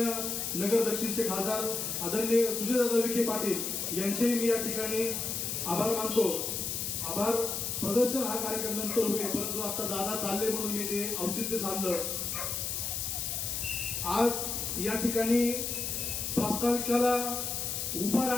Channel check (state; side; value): noise; left; hiss, 2 dB below the sound